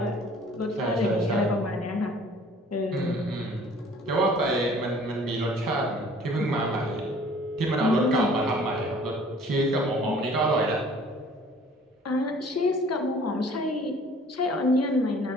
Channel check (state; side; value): normal; both; correlation 0.52